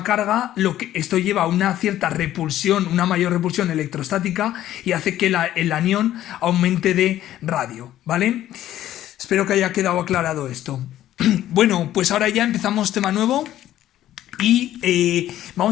carga, esto lleva a una cierta repulsión, una mayor repulsión electrostática y hace que el anión aumente de radio, ¿vale? Espero que haya quedado aclarado esto. Bueno, pues ahora ya empezamos tema nuevo. Y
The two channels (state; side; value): quieter; right; 12.9 dB